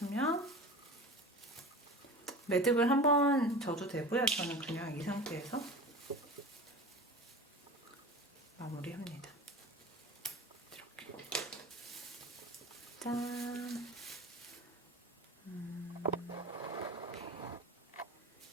매듭을 한번 져도 되고요. 저는 그냥 이 상태에서 마무리합니다. 이렇게. 짠.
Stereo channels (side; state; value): both; normal; correlation 0.34